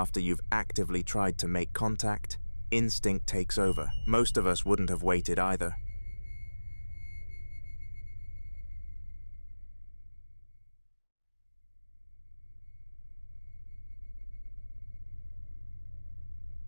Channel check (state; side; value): inverted; both; correlation -1.00